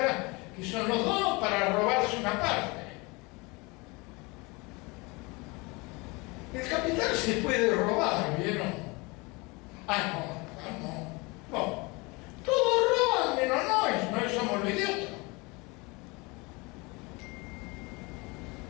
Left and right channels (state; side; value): quieter; right; 26.4 dB